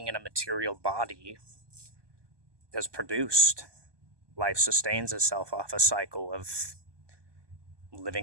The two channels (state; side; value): late; left; 1.2 ms